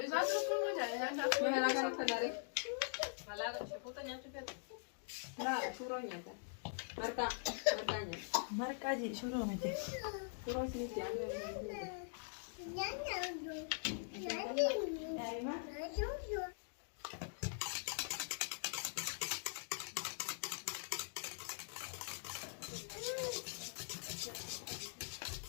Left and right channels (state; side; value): silent; right; digital silence